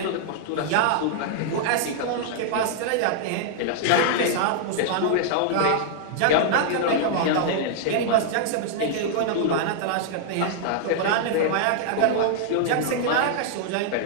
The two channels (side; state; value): both; different; correlation -0.01